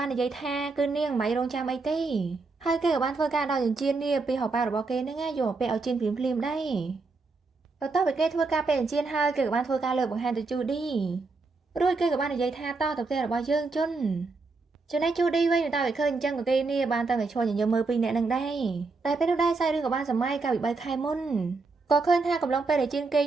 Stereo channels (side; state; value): left; quieter; 3.9 dB